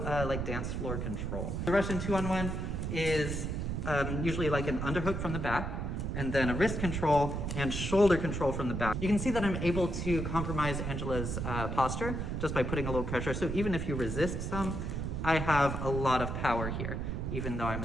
like dance floor control. The Russian 2-on-1 is usually like an underhook from the back, and then a wrist control and shoulder control from the back. You can see that I'm able to compromise Angela's posture just by putting a little pressure. So even if you resist some, I have a lot of power here, even though I'm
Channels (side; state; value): right; noise; rumble, 2 dB below the sound